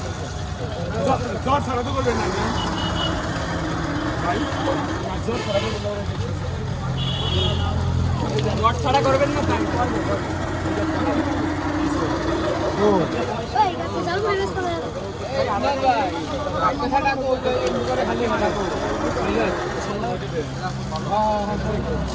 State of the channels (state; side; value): identical; both; correlation 1.00